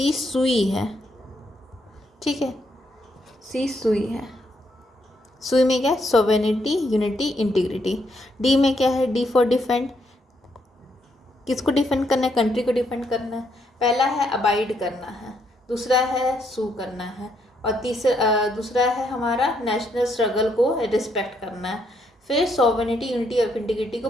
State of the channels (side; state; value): both; normal; correlation 0.75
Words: सुई है, ठीक है, सी सुई है। सुई में क्या है, सोवेनिटी, यूनिटी, इंटीग्रिटी। डी में क्या है, डी फॉर डिफेंड। किसको डिफेंड करना है, कंट्री को डिफेंड करना है। पहला है अबाइड करना है, दूसरा है सू करना है, और दूसरा है हमारा नेशनल स्ट्रगल को रिस्पेक्ट करना है। फिर सोवेनिटी, यूनिटी और इंटीग्रिटी को